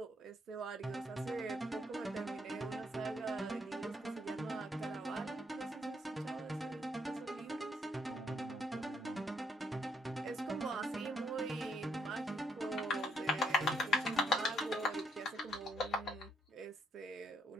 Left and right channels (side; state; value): both; normal; correlation 0.72